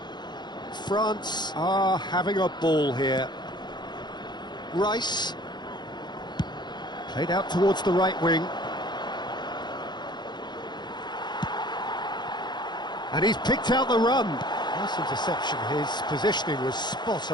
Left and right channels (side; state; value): right; late; 0.21 ms